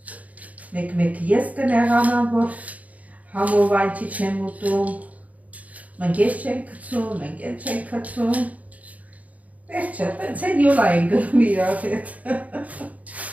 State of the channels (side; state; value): left; late; 0.071 ms